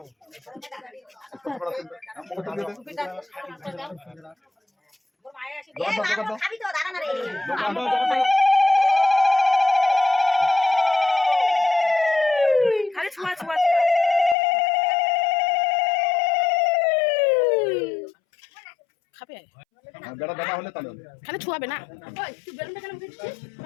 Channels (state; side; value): drops out; right; at 14.4 s